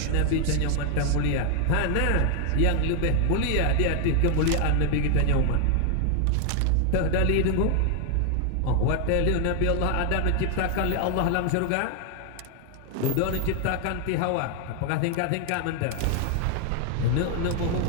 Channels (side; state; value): both; different; correlation 0.00